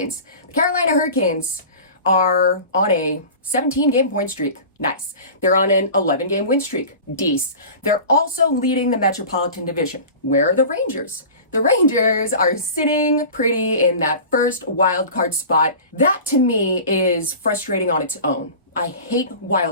The Carolina Hurricanes are on a 17-game point streak. Nice. They're on an 11-game win streak. Dece. They're also leading the Metropolitan Division. Where are the Rangers? The Rangers are sitting pretty in that first wild card spot. That to me is frustrating on its own. I hate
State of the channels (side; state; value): both; inverted; correlation -0.37